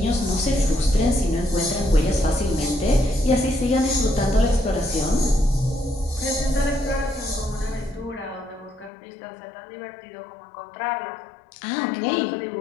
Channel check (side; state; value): right; drops out; at 8.9 s